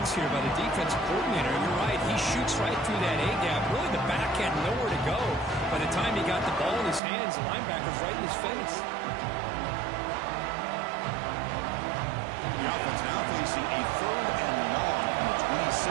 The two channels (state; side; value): drops out; left; at 7.0 s